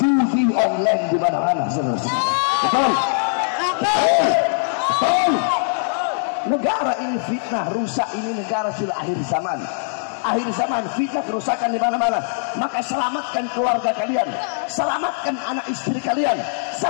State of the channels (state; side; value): silent; right; digital silence